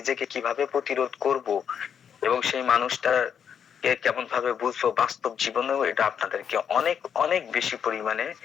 কিভাবে প্রতিরোধ করব এবং সেই মানুষটার কেমন ভাবে বুঝবো বাস্তব জীবনেও, এটা আপনাদেরকে অনেক অনেক বেশি পরিমাণে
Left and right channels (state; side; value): quieter; right; 7.9 dB